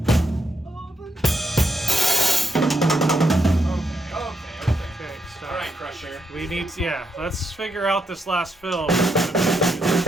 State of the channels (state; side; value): normal; both; correlation 0.79